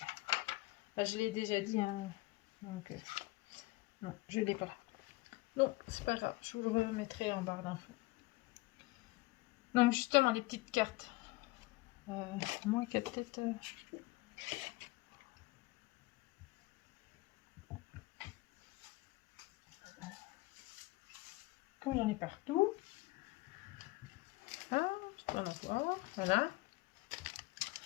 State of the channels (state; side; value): quieter; right; 21.1 dB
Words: Là, je l'ai déjà dit. Hein. Donc, non, je ne l'ai pas là. Non, c'est pas grave. Je vous le remettrai en barre d'infos. Donc, justement, les petites cartes. Moi qui a peut-être... Comme j'en ai partout. Ah, je peux en avoir. Voilà.